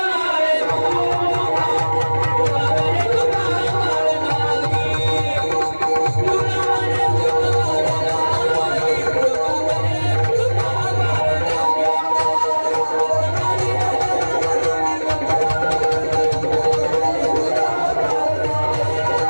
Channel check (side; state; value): both; inverted; correlation -1.00